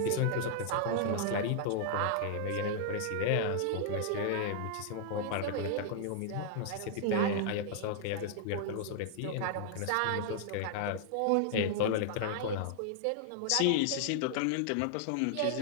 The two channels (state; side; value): different; both; correlation -0.01